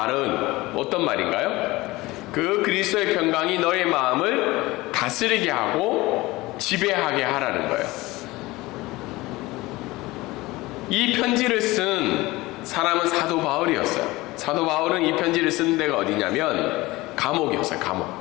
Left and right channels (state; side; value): quieter; right; 20.2 dB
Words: 어떤 말인가요? 그 그리스도의 평강이 너의 마음을 다스리게 하고 지배하게 하라는 거예요. 이 편지를 쓴 사람은 사도 바울이었어요. 사도 바울은 이 편지를 쓴 데가 어디냐면 감옥이었어요.